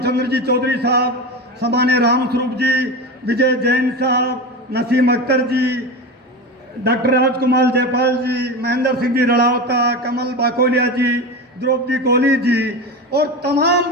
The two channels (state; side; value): normal; both; correlation 0.24